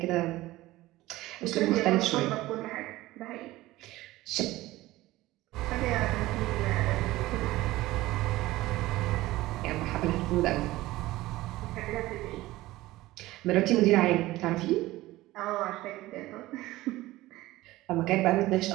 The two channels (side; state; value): left; quieter; 17.7 dB